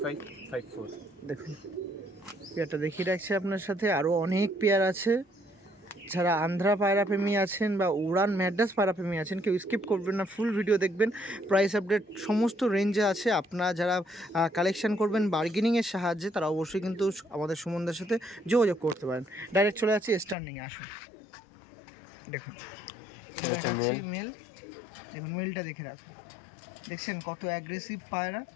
দেখুন পেয়ারটা দেখিয়ে রাখছি আপনার সাথে। আরও অনেক পেয়ার আছে। যারা আন্ধ্রা পায়রা প্রেমী আছেন বা উড়ান ম্যাড্রাস পায়রা প্রেমী আছেন কেউ স্কিপ করবেন না, ফুল ভিডিও দেখবেন। প্রাইস আপডেট সমস্ত রেঞ্জে আছে। আপনারা যারা কালেকশন করবেন বার্গেনিংয়ের সাহায্যে তারা অবশ্যই কিন্তু আমাদের সুমনদার সাথে যোগাযোগ করতে পারেন। ডাইরেক্ট চলে যাচ্ছি স্ট্যান্ডিংয়ে, আসুন। দেখুন এটা দেখাচ্ছি মেল, দেখুন মেলটা দেখে রাখুন, দেখছেন কত অ্যাগ্রেসিভ পায়রা।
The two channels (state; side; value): drops out; right; at 20.4 s